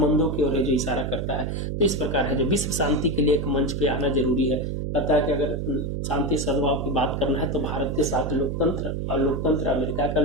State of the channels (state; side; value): noise; right; hum, 2 dB below the sound